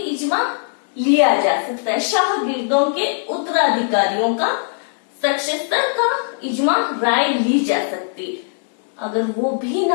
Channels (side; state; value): right; silent; digital silence